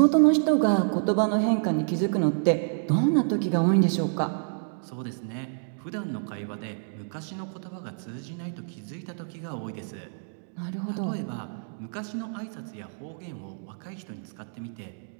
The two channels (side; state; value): left; silent; digital silence